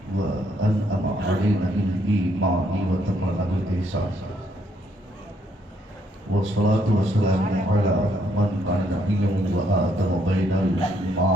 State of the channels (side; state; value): both; normal; correlation 0.71